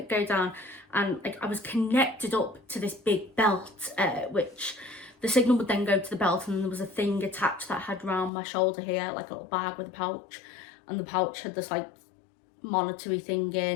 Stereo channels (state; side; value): drops out; right; at 8.3 s